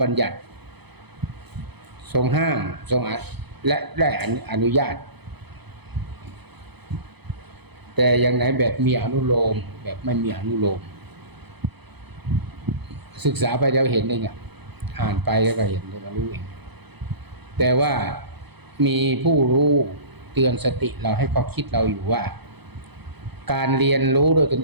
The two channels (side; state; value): left; late; 0.98 ms